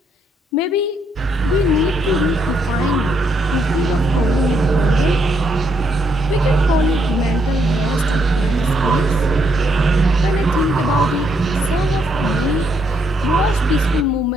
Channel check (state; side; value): normal; both; correlation 0.74